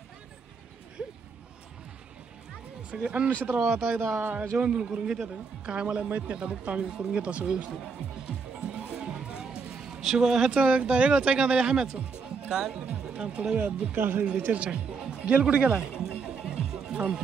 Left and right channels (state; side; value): quieter; left; 5.1 dB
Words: सगळे अन्न क्षेत्र आता एकदा जेवण बिवण करून घेतात काय मला माहित नाही आता बघतो आम्ही करून घेतो असं व्यवस्थित शिव ह्याचं एकदा वेगळंच ऐका झालं हाम्याचं काय थोड्या वेळात चर्चा गेल कुठे गेला